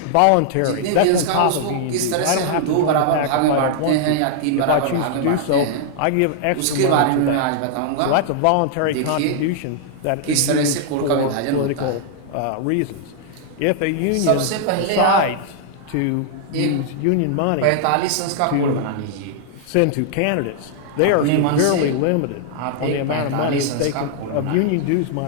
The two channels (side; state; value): both; different; correlation -0.01